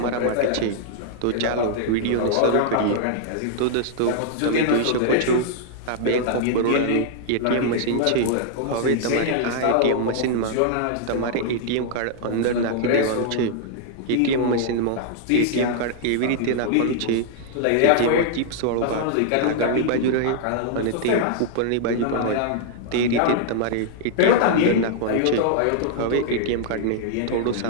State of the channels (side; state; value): both; different; correlation -0.01